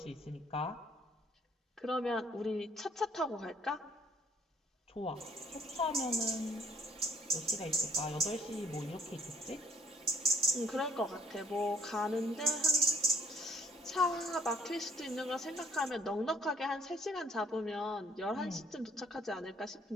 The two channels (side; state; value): both; normal; correlation 0.63